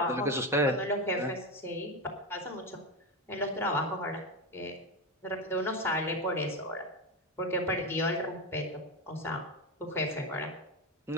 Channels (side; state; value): both; normal; correlation 0.14